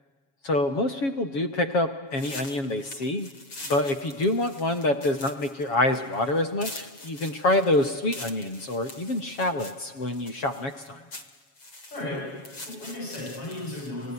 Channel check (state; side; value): late; right; 7.3 ms